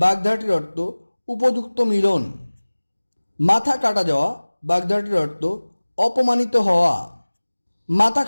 অর্থ উপযুক্ত মিলন। মাথা কাটা যাওয়া বাগধারাটির অর্থ অপমানিত হওয়া। মাথা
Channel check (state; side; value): inverted; both; correlation -1.00